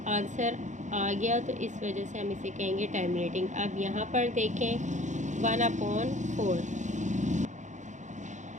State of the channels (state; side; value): late; left; 0.35 ms